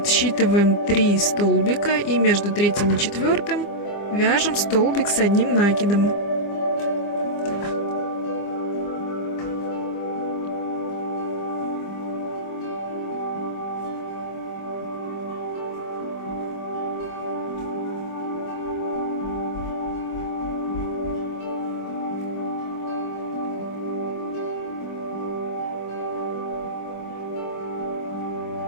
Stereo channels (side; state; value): right; late; 25 ms